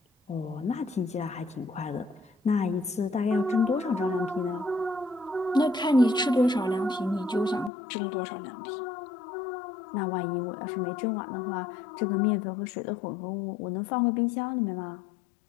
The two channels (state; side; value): drops out; right; at 7.7 s